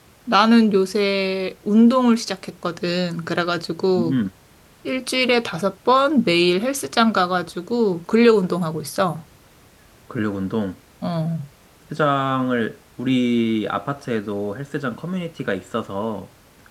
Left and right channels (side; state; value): both; identical; correlation 1.00